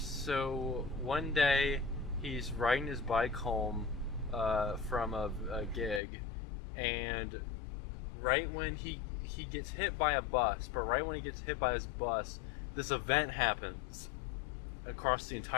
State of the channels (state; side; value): drops out; right; at 6.0 s